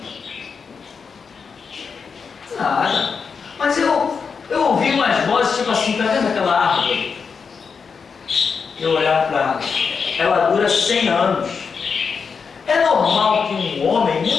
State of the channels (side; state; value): right; quieter; 5.7 dB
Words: Nada. Mas eu ouvi umas vozes tipo assim: tá vendo aquela árvore? Eu olhar para ela, ela dura 100 anos. É normal que um homem